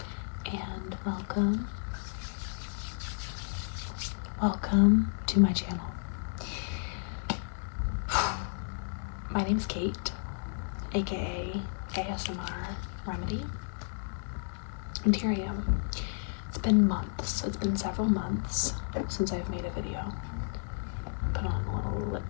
and welcome to my channel. My name is Kate, aka ASMR Remedy, and here I am. It's been months, it's been several months since I've made a video. Put on a little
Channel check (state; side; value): silent; right; digital silence